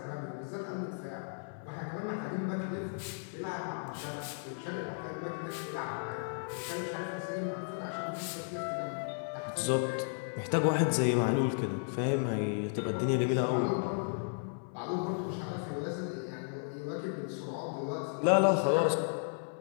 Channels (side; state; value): right; silent; 55 dB below the other